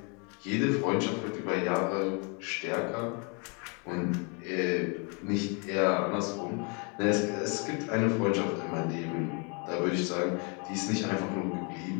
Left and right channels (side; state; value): right; quieter; 34.8 dB